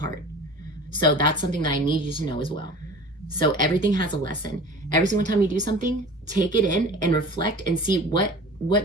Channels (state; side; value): normal; both; correlation 0.40